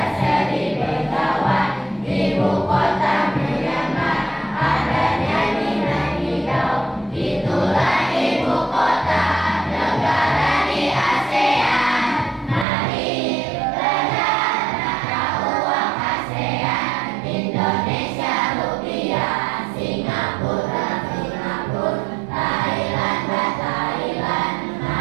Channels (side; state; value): left; drops out; at 12.7 s